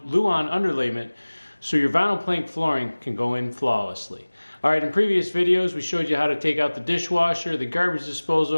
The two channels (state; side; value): inverted; both; correlation -1.00